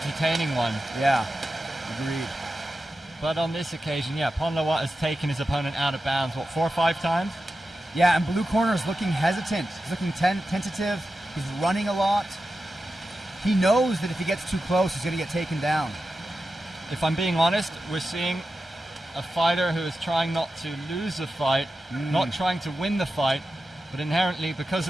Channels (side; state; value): both; normal; correlation 0.92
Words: one. Yeah, agreed. But on this occasion, yeah, Ponlawat has taken his opponent out of bounds, what, 4 or 5 times? Yeah, and Blue corner is looking hesitant. He's looking tentative. He's running a lot. He knows that if he gets too close, he's going to get taken down. If I'm being honest, we're seeing a fighter who is trying not to lose a fight, not trying to win the fight, but inherently, because